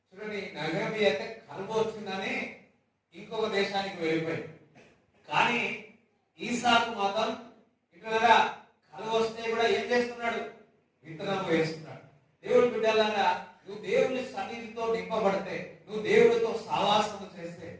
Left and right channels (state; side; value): identical; both; correlation 1.00